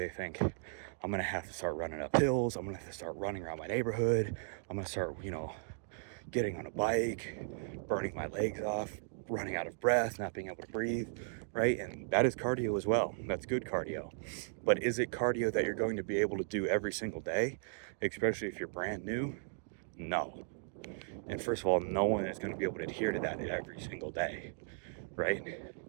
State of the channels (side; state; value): left; silent; digital silence